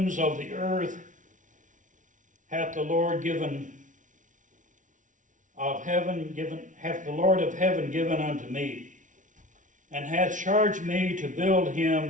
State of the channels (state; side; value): late; left; 0.37 ms